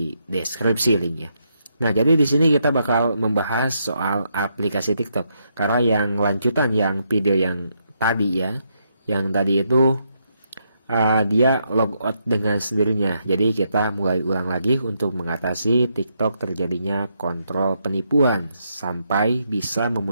deskripsi linknya. Nah, jadi di sini kita bakal membahas soal aplikasi TikTok. Karena yang lanjutan yang video yang tadi ya, yang tadi itu dia logout dengan sendirinya. Jadi kita mulai ulang lagi untuk mengatasi TikTok terjadinya kontrol penipuan sampai bisa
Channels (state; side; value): inverted; both; correlation -0.78